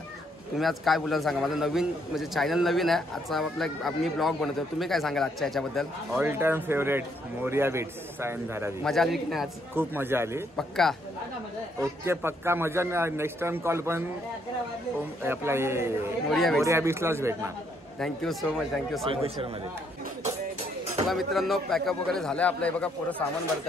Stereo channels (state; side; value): normal; both; correlation 0.71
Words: तुम्ही आज काय बोलाल सांगा. माझं नवीन म्हणजे चॅनल नवीन आहे. आजचा मी ब्लॉग बनवतो. तुम्ही काय सांगाल आजच्या याच्याबद्दल? All time favourite Morya beats Sion Dharavi. मजा आली की नाही आज? खूप मजा आली. पक्का? ओके पक्का मजा. नेक्स्ट टाइम कॉल पण आपला मोरिया बीट्सलाच भेटणार. Thank you so much. मध्ये चला मित्रांनो, पॅकअप वगैरे झालं आहे आपलं. हे बघा पोरं सामान भरत